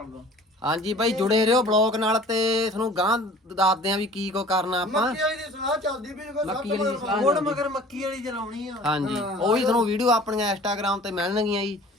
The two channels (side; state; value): both; normal; correlation 0.46